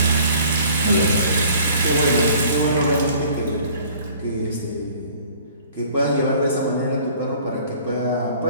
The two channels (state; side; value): inverted; both; correlation -0.52